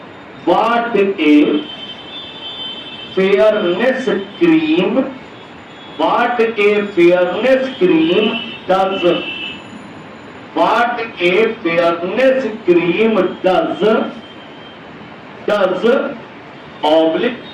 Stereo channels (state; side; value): identical; both; correlation 1.00